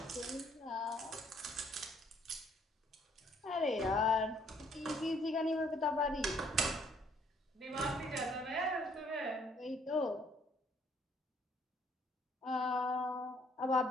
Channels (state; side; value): normal; both; correlation 0.64